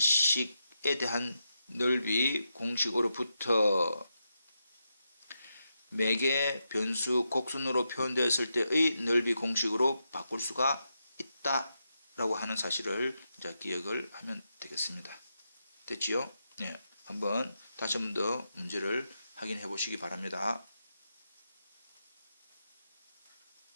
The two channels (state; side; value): inverted; both; correlation -0.85